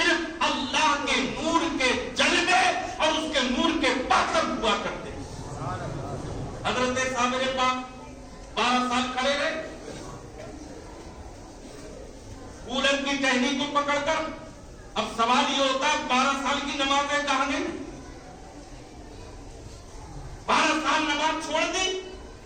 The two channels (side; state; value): both; identical; correlation 1.00